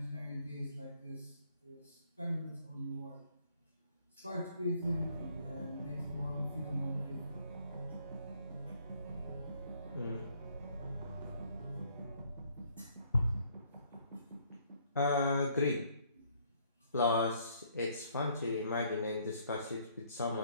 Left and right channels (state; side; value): inverted; both; correlation -0.65